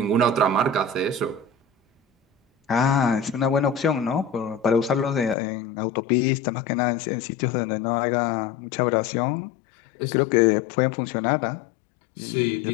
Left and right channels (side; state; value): right; drops out; at 5.4 s